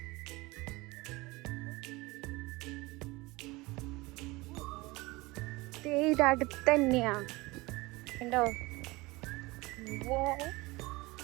ഇത് അടുത്ത് തന്നെയാ ഉണ്ടോ.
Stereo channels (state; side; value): quieter; left; 22.5 dB